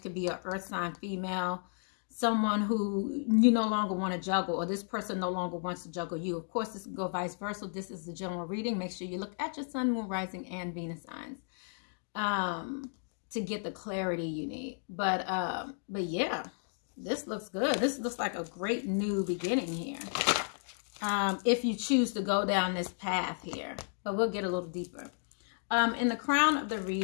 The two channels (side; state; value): right; silent; digital silence